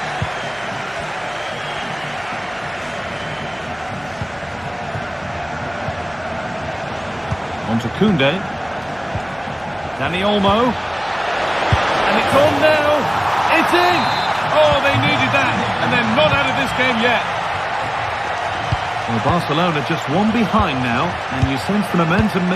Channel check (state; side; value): noise; right; hum, 26 dB below the sound